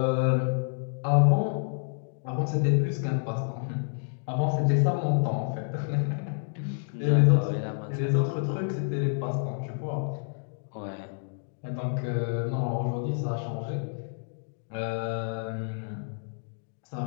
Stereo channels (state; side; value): silent; right; digital silence